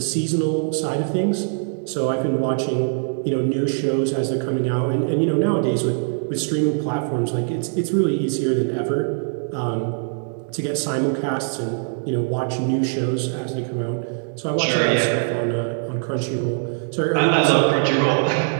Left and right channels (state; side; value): silent; left; 64 dB below the other